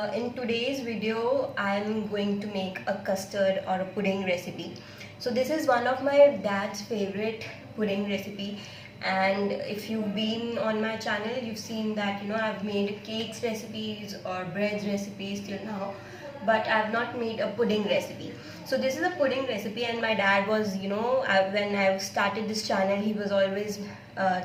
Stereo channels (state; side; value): identical; both; correlation 1.00